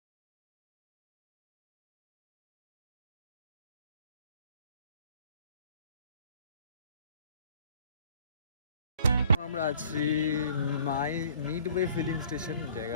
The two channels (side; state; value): both; inverted; correlation -0.55